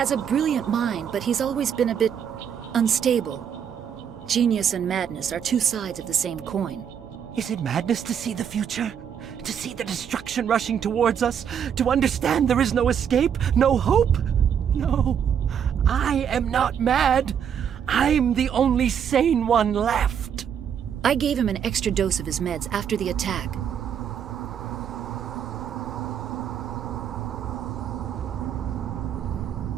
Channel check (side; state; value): left; quieter; 8.3 dB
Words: a brilliant mind, but he's always been a bit unstable. Genius and madness are two sides of the same coin. Is it madness to see the future? To see the destruction rushing towards us? To understand there is no escape? No hope? No. I am not mad. I'm the only sane one left. I gave him an extra dose of his meds after the attack.